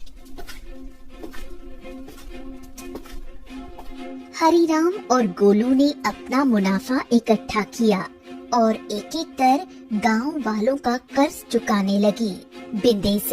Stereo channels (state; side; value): identical; both; correlation 1.00